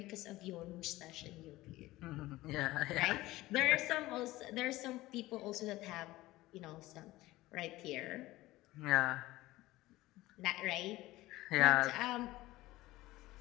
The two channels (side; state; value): right; quieter; 17.9 dB